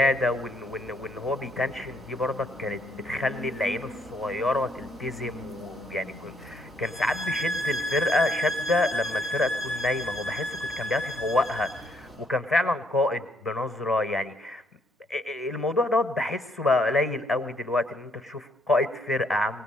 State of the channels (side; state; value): both; normal; correlation 0.70